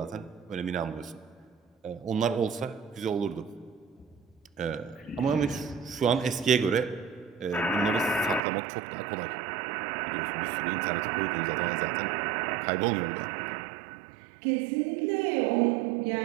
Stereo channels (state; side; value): drops out; left; at 8.4 s